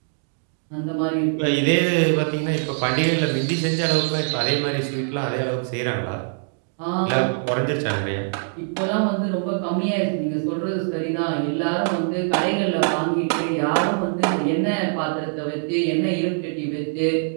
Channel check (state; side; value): silent; left; digital silence